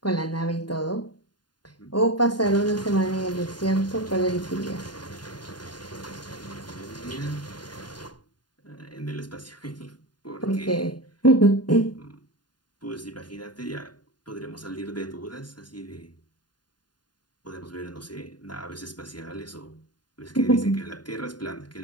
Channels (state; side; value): late; right; 0.70 ms